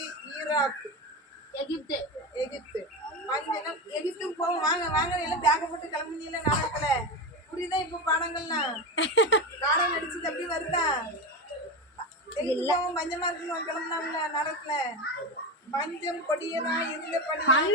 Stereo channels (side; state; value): both; normal; correlation 0.18